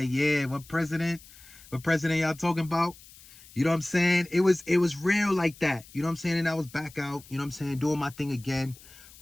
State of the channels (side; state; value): left; noise; hiss, 22 dB below the sound